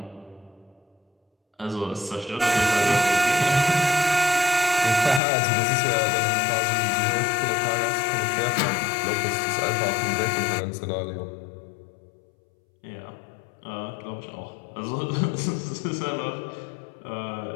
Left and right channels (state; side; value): drops out; right; at 5.2 s